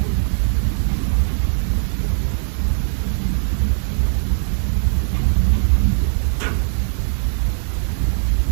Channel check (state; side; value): silent; left; 65 dB below the other